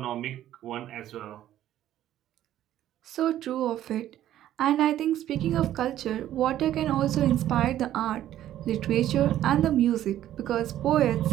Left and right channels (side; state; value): left; quieter; 12.4 dB